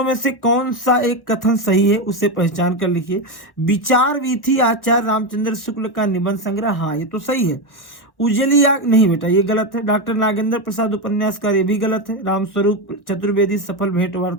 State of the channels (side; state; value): right; late; 1.3 ms